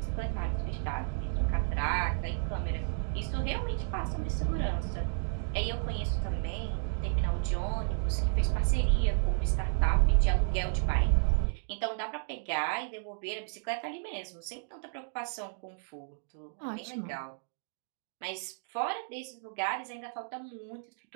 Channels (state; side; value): silent; left; digital silence